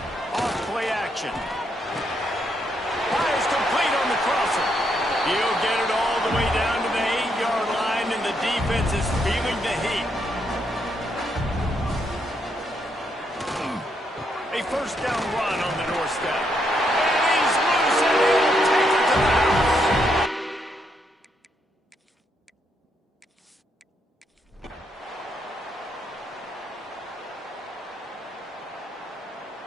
Off play action. Fires complete on the crosser. He'll get it all the way down to the 8-yard line, and the defense is feeling the heat. A 1st down run on the doorstep. And he's loose, and he'll take it to the house.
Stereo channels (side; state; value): both; normal; correlation 0.77